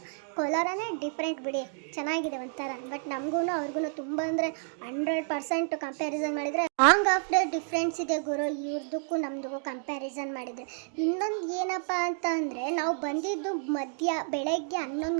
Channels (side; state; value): left; silent; 58 dB below the other